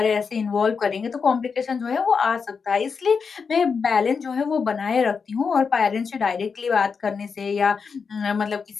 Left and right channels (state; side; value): quieter; right; 5.6 dB